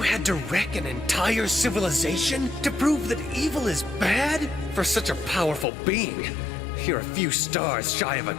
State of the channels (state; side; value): drops out; right; at 5.7 s